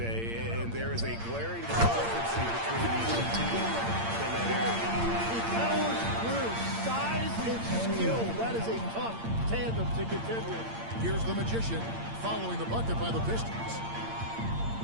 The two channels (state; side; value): late; left; 8.7 ms